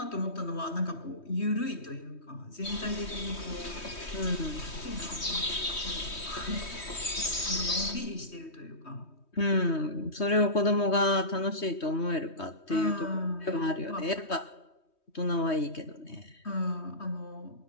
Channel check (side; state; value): right; late; 3.2 ms